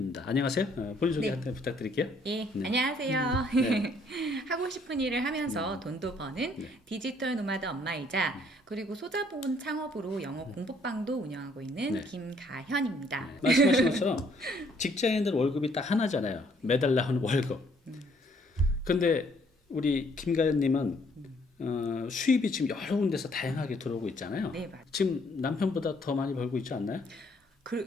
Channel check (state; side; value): normal; both; correlation 0.65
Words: 안녕하세요. 본인 소개 네. 한번 부탁드릴게요. 예, 네. 안녕하세요. 네. 하고 싶은 일을 하면서 돈도 버는 네. 디지털 노마드 엄마이자 그리고 소자본 창업으로 영어 공부방도 운영하고 있는 네. 김가현입니다. 말씀하신 것처럼 직장인들 월급이 딱 하나잖아요. 매달 나오는 월급. 근데 우리 김가현님은 수입이 지금 여러 군데서 다양하게 들어오고 있잖아요. 네, 맞아요. 지금 남편보다 더 많이 벌고 있지 않나요?